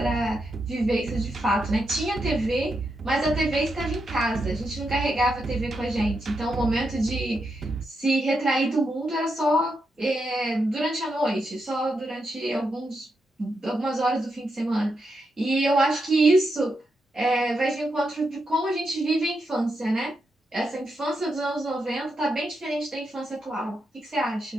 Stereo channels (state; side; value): normal; both; correlation 0.84